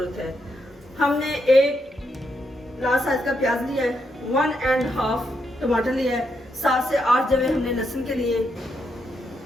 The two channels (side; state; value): both; normal; correlation 0.80